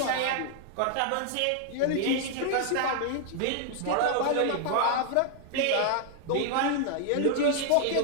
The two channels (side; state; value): both; different; correlation 0.00